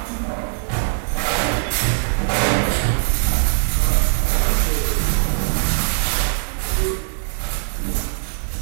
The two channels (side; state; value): left; silent; digital silence